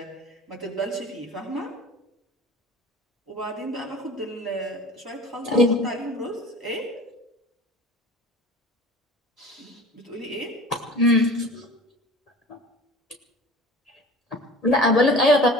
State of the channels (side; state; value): both; normal; correlation 0.41